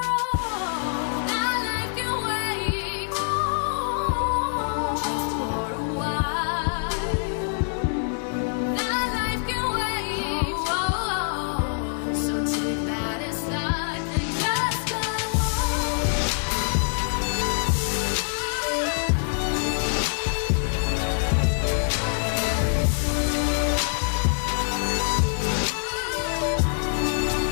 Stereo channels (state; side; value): silent; right; 62 dB below the other